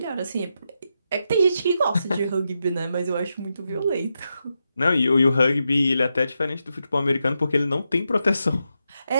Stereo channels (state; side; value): inverted; both; correlation -0.86